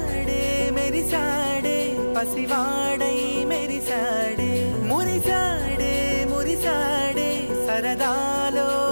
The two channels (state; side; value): inverted; both; correlation -1.00